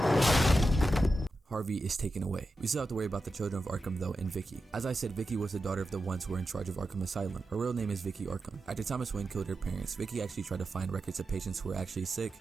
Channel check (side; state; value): both; normal; correlation 0.90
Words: Harvey is taken away. We still have to worry about the Children of Arkham though and Vicky. As I said, Vicky was the daughter of the ones who were in charge of Arkham Asylum. Her real name is Vicky Arkham. After Thomas Wayne killed her parents, Vicky actually tried to find records of patients who were actually sick